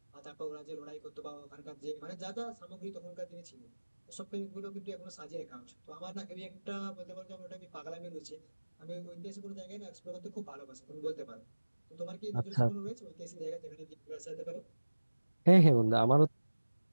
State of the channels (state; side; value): inverted; both; correlation -1.00